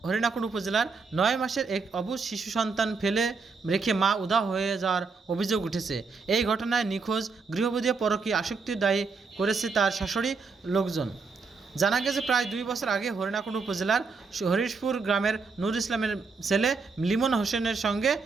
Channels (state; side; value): quieter; left; 4.6 dB